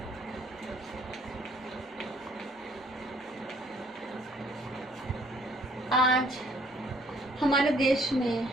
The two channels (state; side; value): normal; both; correlation 0.62